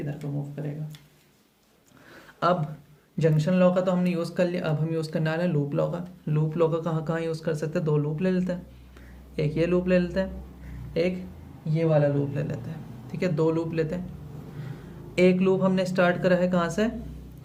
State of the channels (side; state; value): both; identical; correlation 1.00